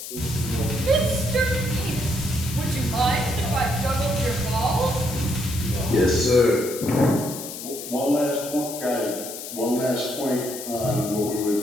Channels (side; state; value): left; noise; hiss, 9 dB below the sound